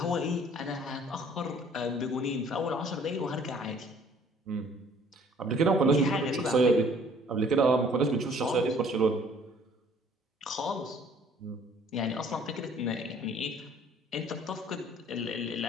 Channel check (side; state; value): both; normal; correlation 0.57